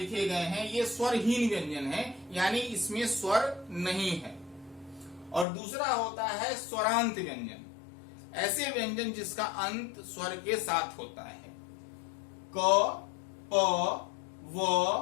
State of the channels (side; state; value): right; drops out; at 5.5 s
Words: गए हैं ये स्वरहीन व्यंजन हैं, यानी इसमें स्वर नहीं है। और दूसरा होता है स्वरांत व्यंजन, ऐसे व्यंजन जिसका अंत स्वर के साथ होता है। क, प,